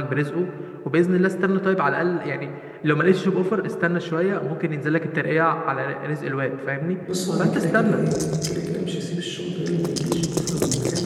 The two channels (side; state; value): both; identical; correlation 1.00